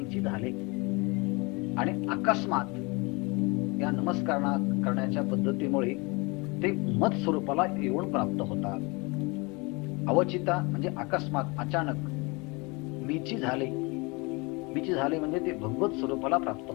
झाले. आणि अकस्मात या नमस्कार करण्याच्या पद्धतीमुळे ते मत स्वरूपाला येऊन प्राप्त होतात. अवचिता म्हणजे अकस्मात, अचानक. मीची झाले म्हणजे ते भगवत स्वरूपाला प्राप्त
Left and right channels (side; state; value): right; quieter; 27.7 dB